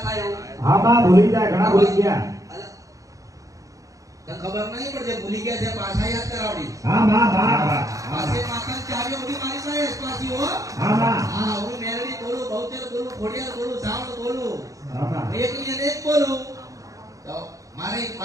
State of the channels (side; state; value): left; late; 0.16 ms